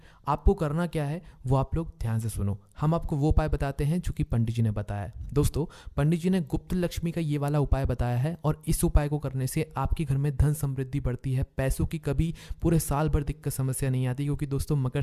आपको करना क्या है वो आप लोग ध्यान से सुनो। हम आपको वो उपाय बताते हैं जो कि पंडित जी ने बताया है। दोस्तों पंडित जी ने गुप्त लक्ष्मी का ये वाला उपाय बताया है और इस उपाय को करने से आपके घर में धन समृद्धि बढ़ती है, पैसों की कभी पूरे साल भर दिक्कत समस्या नहीं आती। क्योंकि दोस्तों मकर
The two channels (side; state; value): both; identical; correlation 1.00